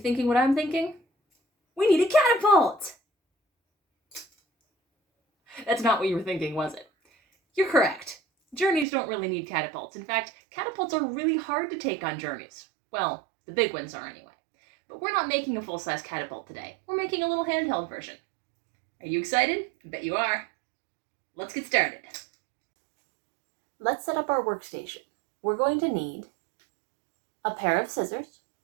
what I'm thinking? We need a catapult! That's not what you were thinking, was it? You're correct. Journeys don't really need catapults. In fact, catapults are really hard to take on journeys. Well, the big ones are anyway. But we're not making a full-size catapult today. We're making a little handheld version. Are you excited? I bet you are. Let's get started. Let's set up our workstation. We're going to need a pair of scissors,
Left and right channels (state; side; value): drops out; left; at 8.8 s